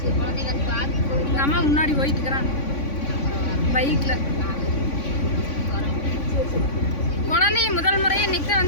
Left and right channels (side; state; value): right; late; 3.5 ms